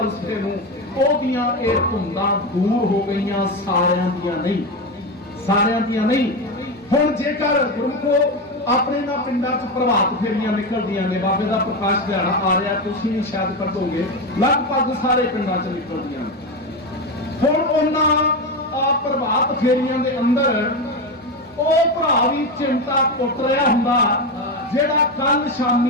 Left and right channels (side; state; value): both; normal; correlation 0.15